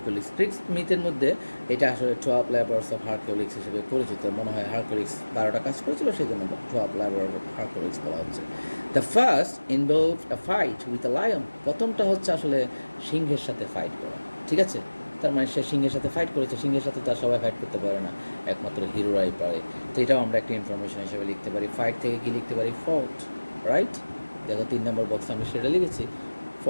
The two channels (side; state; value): both; inverted; correlation -1.00